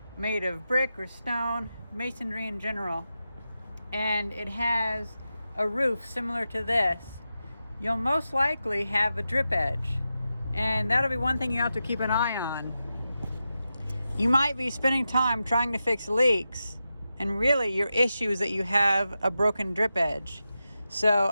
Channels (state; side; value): inverted; both; correlation -0.90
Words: made of brick or stone, masonry in general, and it has a roof similar to this, you'll most likely have a drip edge. And that'll be one thing you have to keep an eye on. You might be spending time trying to fix leaks, and really your issue is that you have a broken drip edge. So